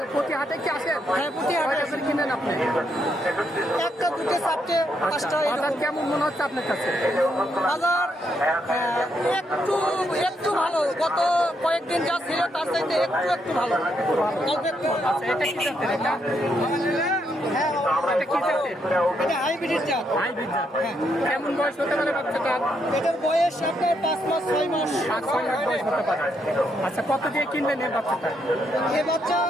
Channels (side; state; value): both; normal; correlation 0.77